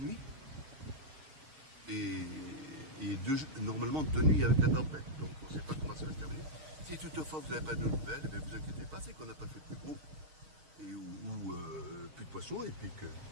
Et normalement 2 nuits avec la tempête. Donc on ne sait pas comment ça va se terminer. Si toutefois vous n'avez pas de nouvelles, ne vous inquiétez pas, c'est qu'on n'a pas fait plus gros ou plus de poissons et puis que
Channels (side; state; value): left; late; 6.5 ms